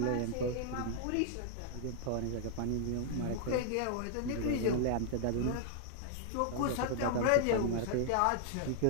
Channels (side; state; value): both; different; correlation -0.01